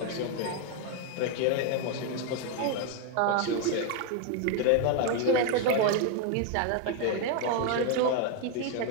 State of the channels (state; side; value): different; both; correlation 0.01